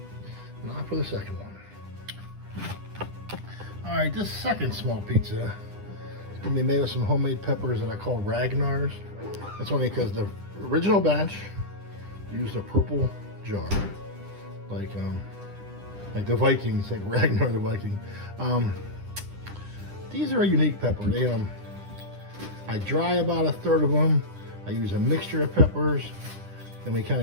now for the second one. All right, this second small pizza is gonna be made with some homemade peppers that I call Ragnar's. That's only because the original batch used a purple jar, like the Vikings, like Ragnar the Viking. These are a unique pepper. They I dry about a third of them. I use a mixture of peppers, and we kind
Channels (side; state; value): left; late; 10 ms